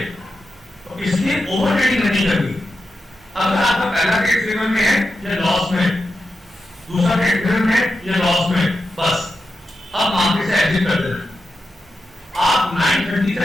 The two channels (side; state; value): both; normal; correlation 0.89